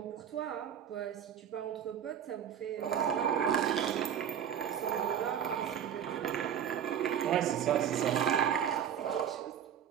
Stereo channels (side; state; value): left; quieter; 8.9 dB